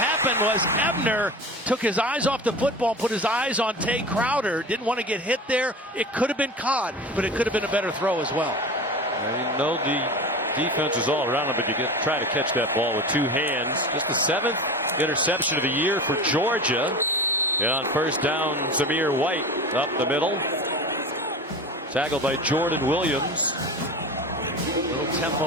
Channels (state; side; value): normal; both; correlation 0.31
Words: was Ebner took his eyes off the football and put his eyes on Tay Crowder. Didn't want to get hit there. It could have been caught, but it could have been a better throw as well. You know, the defense is all around him, but you try to catch that ball with 2 hands. Just the 7th interception of the year for Georgia. And on first down, Zamir White up the middle. Tackled by Jordan Williams. Little